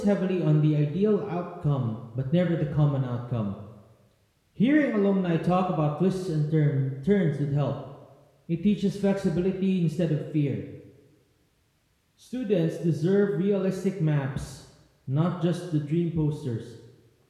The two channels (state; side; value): identical; both; correlation 1.00